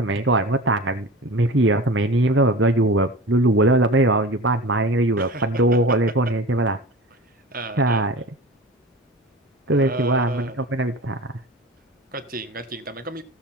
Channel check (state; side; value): normal; both; correlation 0.34